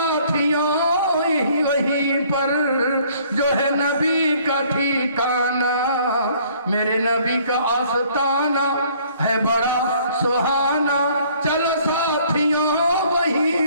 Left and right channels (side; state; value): both; inverted; correlation -0.59